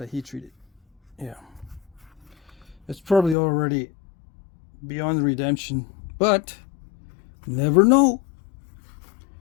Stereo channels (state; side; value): drops out; right; at 3.4 s